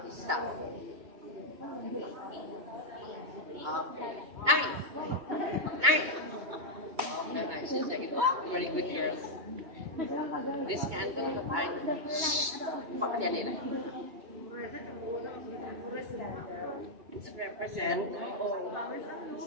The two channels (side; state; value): left; late; 2.2 ms